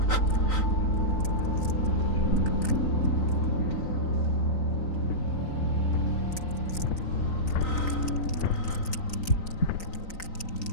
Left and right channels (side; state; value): right; late; 3.9 ms